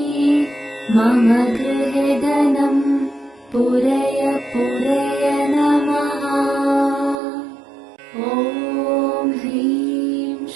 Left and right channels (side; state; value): left; drops out; at 7.2 s